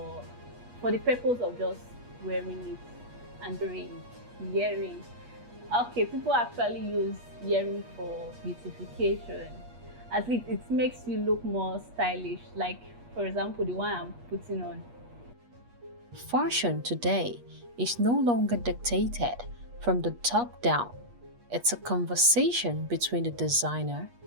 the purpose of just wearing it and doing earrings. Okay, people actually use earrings for beautification. At least it makes you look more stylish, like for example the one I'm putting on. Fashion today is no longer dictated from the top down. It's a conversation between the designer,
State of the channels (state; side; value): late; left; 8.4 ms